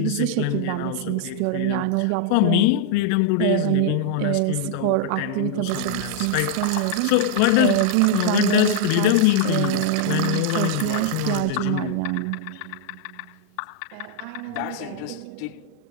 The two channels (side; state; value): both; different; correlation -0.01